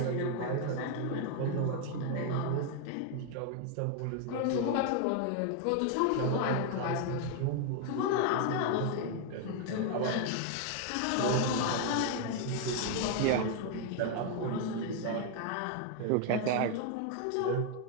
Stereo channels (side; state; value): both; different; correlation 0.00